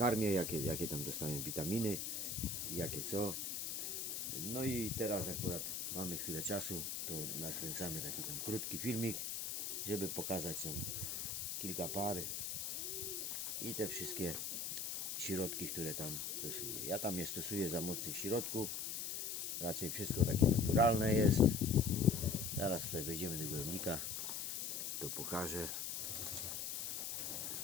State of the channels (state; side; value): noise; left; hiss, 3 dB below the sound